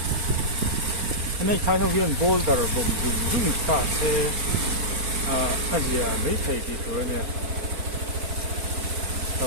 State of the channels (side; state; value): left; late; 4.4 ms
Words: này khai thác viên boulder bom dung ta sẽ Asia mấy thầy thì thôi nè